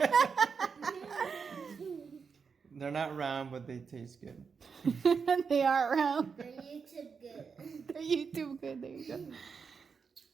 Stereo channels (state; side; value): quieter; left; 5.7 dB